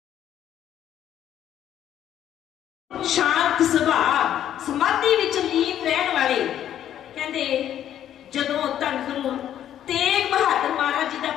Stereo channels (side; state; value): right; quieter; 10.8 dB